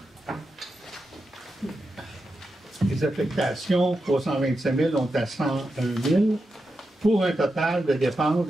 Les affectations, 325 000, on est à 101 000, pour un total de dépenses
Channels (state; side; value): normal; both; correlation 0.88